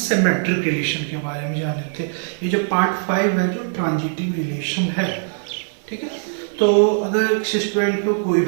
रिलेशन के बारे में जाने थे। ये जो पार्ट 5 है जो ट्रांजिटिव रिलेशन है, ठीक है। तो अगर किसी स्टूडेंट को कोई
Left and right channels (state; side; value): silent; left; digital silence